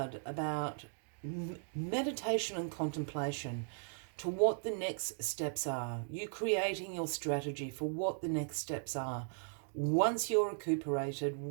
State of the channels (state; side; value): silent; left; digital silence